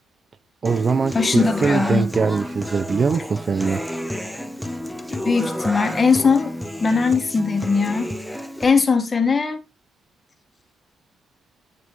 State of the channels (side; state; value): both; normal; correlation 0.86